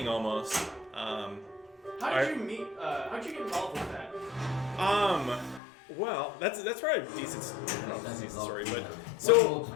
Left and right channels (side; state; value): right; drops out; at 5.6 s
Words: almost. How did you meet? How'd you get involved with that? Well, that's probably a decent story, but One so more to